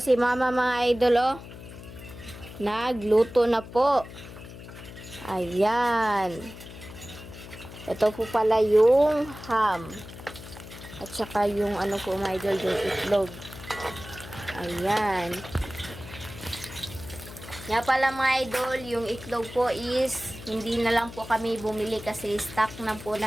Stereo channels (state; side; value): noise; left; hum, 14 dB below the sound